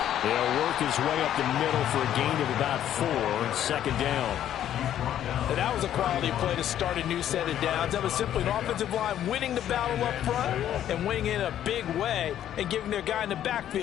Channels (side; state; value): right; quieter; 11.0 dB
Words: He'll work his way up the middle for a gain of about 4, second down. And that was a quality play to start a new set of downs. That was simply an offensive line winning the battle up front and winning in a big way and giving their guy in the